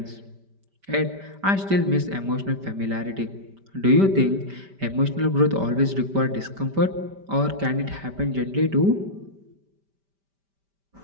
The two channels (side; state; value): left; late; 5.1 ms